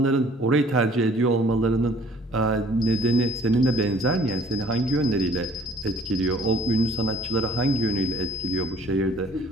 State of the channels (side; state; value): both; normal; correlation 0.55